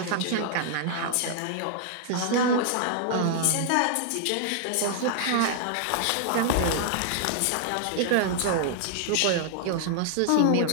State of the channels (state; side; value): different; both; correlation 0.00